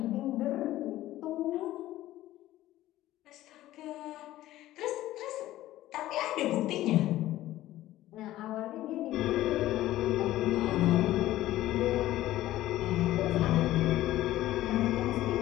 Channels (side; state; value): right; quieter; 15.0 dB